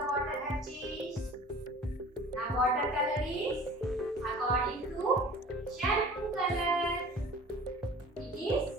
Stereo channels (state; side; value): normal; both; correlation 0.43